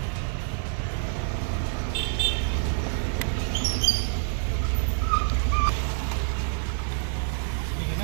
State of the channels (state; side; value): silent; left; 60 dB below the other